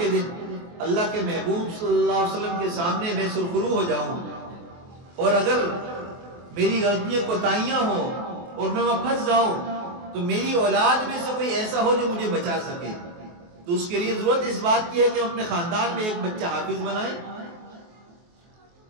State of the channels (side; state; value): left; late; 23 ms